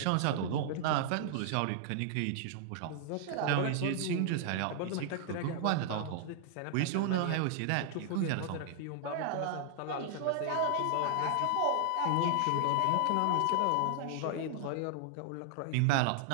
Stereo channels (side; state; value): both; different; correlation -0.01